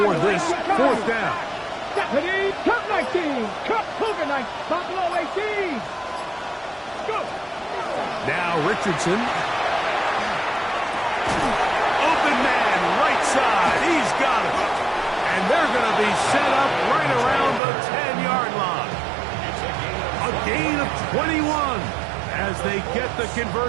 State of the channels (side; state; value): left; drops out; at 17.6 s